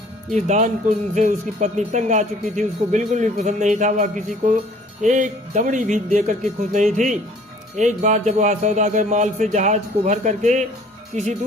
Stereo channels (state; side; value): normal; both; correlation 0.54